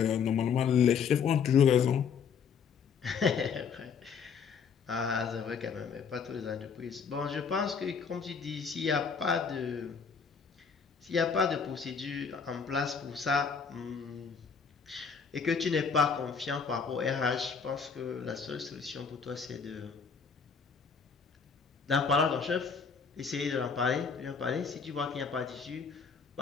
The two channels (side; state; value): right; quieter; 6.1 dB